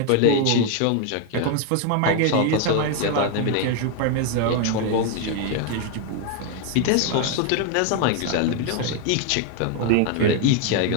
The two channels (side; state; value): both; different; correlation 0.01